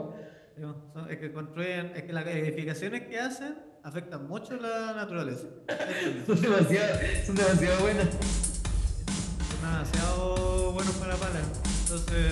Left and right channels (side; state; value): both; identical; correlation 1.00